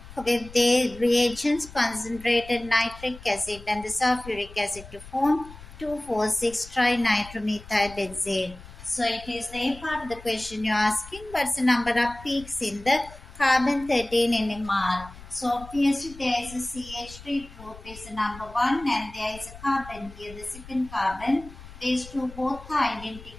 with the reagents concentrated nitric acid and the sulfuric acid to form 2,4,6 trinitromethyl benzene. So it is the A part of the question you're asking. What's the number of peaks in the carbon 13 NMR? So obviously there is a CH3 group is the number 1 and there is a carbon here, the second carbon. These two both are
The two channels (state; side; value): noise; left; rumble, 17 dB below the sound